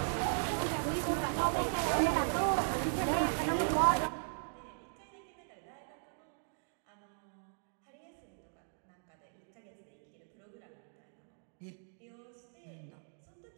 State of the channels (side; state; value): left; silent; digital silence